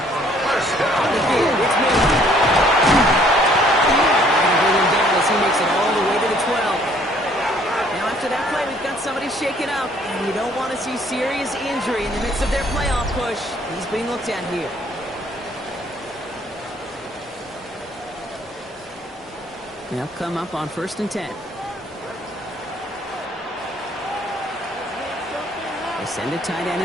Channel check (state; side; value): normal; both; correlation 0.61